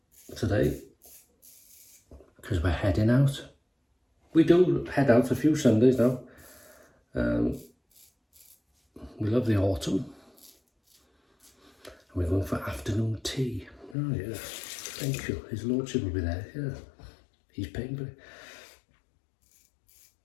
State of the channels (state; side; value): drops out; right; at 14.0 s